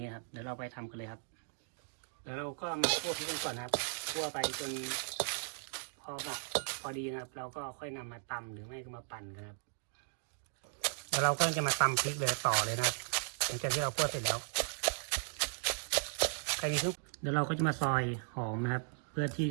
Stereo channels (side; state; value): left; silent; digital silence